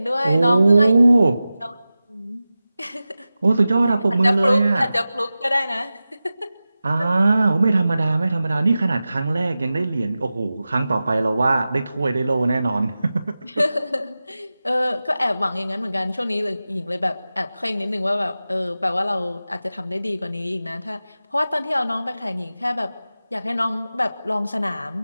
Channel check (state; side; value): inverted; both; correlation -0.95